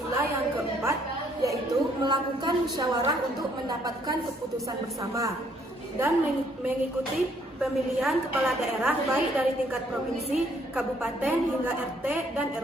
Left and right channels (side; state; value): both; normal; correlation 0.66